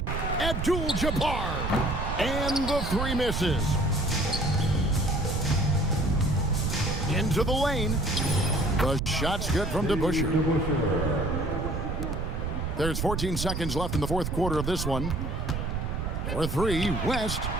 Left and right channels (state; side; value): noise; right; rumble, 2 dB below the sound